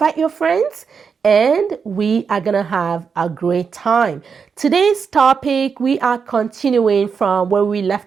your friends, and we are going to have a great time. Today's topic, we are continuing from where we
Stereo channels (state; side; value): quieter; left; 6.0 dB